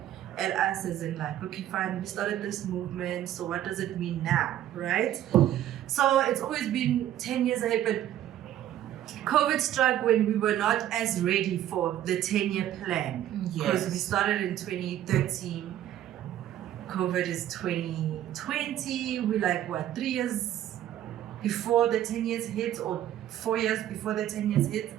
at us as in like, okay, fine, we started this movement, so what does it mean now, right? So it's always been 10 years ahead, but COVID struck when we were not as ready for the 10-year plan. Because we started in 2013. COVID is 2020. We're like, 3 years before the 10 years hit, or 4 years before the 10 years hit.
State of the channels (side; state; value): left; quieter; 12.0 dB